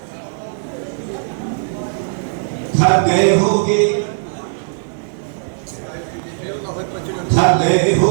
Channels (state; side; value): silent; left; digital silence